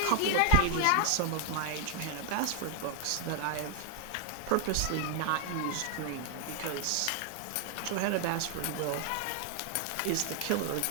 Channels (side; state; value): both; different; correlation 0.00